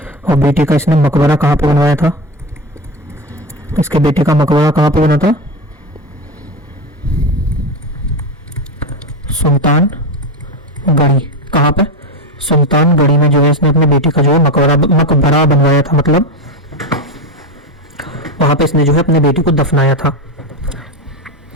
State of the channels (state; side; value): normal; both; correlation 0.18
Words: और बेटे का इसने मकबरा कहाँ पे बनवाया था? इसके बेटे का मकबरा कहाँ पे बना था? सुल्तान गढ़ी। कहाँ पे? सुल्तान गढ़ी में जो है इसने अपने बेटे का जो है मकबरा बनवाया था, मतलब वहां पे इसने जो है अपने बेटे को दफनाया था।